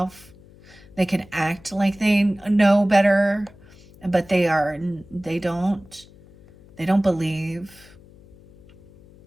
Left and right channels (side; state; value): left; noise; hum, 24 dB below the sound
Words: They can act like they know better, but they don't believe.